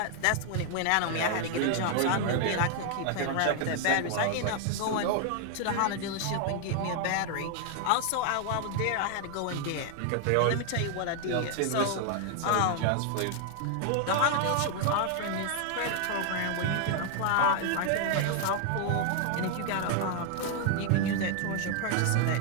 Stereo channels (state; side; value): different; both; correlation 0.00